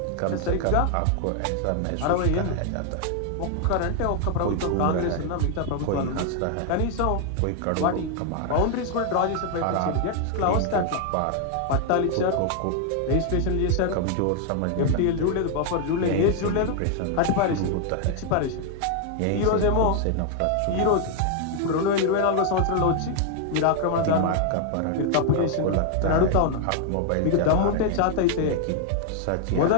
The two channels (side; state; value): both; different; correlation 0.00